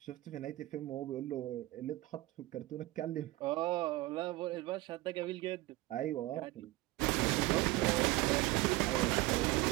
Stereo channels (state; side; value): quieter; left; 19.3 dB